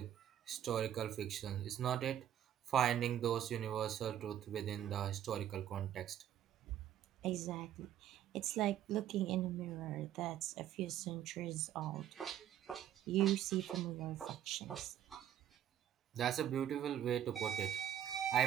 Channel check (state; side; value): quieter; left; 10.9 dB